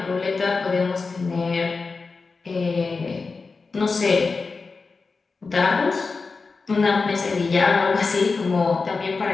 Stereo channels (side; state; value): right; quieter; 4.3 dB